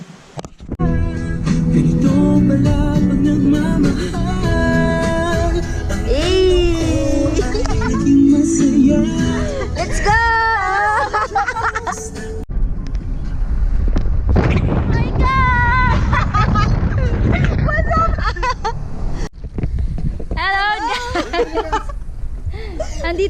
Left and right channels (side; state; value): both; identical; correlation 1.00